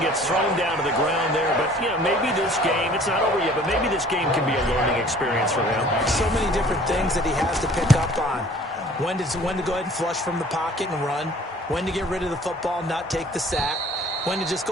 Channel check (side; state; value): both; normal; correlation 0.51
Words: thrown down to the ground there. But, you know, maybe this game, it's not over yet, but maybe this game can be a learning experience for him. So many different things that he has to pick up on. When to go ahead and flush from the pocket and run. When to get rid of the football and not take the sack. When to just